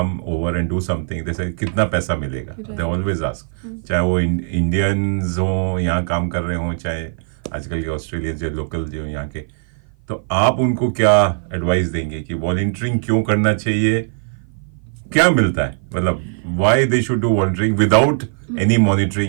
over and do something, जैसे कितना पैसा मिलेगा, दे ऑलवेज आस्क, चाहे वो इंडियंस हो यहाँ काम कर रहे हों, चाहे आजकल के ऑस्ट्रेलियंस जो लोकल जो यहाँ के. तो आप उनको क्या एडवाइस देंगे कि वॉलंटियरिंग क्यों करना चाहिए, क्या मिलता है, मतलब why they should do volunteering without any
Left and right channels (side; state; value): left; silent; 55 dB below the other